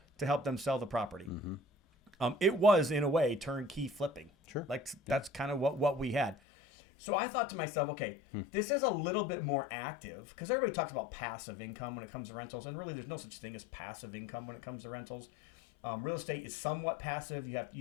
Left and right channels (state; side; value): drops out; right; at 6.4 s